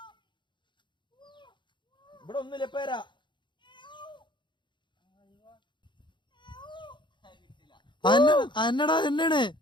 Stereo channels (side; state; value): right; late; 0.23 ms